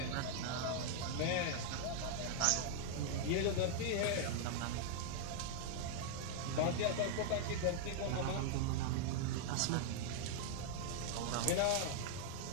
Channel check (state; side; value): different; both; correlation -0.01